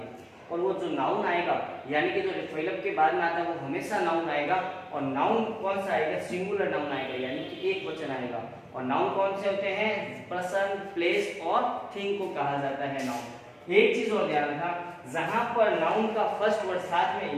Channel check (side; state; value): both; identical; correlation 1.00